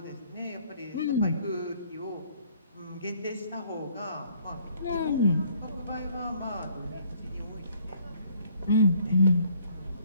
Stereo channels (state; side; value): inverted; both; correlation -0.61